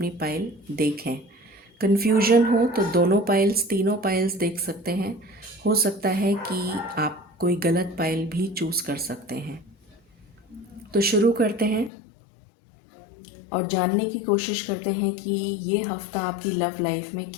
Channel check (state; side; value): drops out; right; at 11.9 s